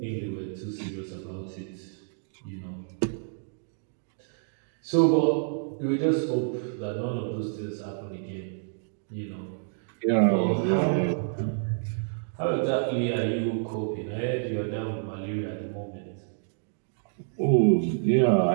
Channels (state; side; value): silent; left; digital silence